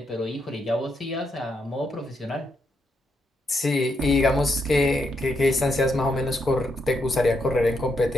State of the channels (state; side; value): normal; both; correlation 0.79